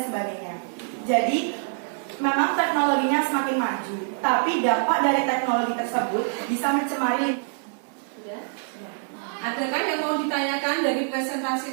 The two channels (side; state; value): left; silent; digital silence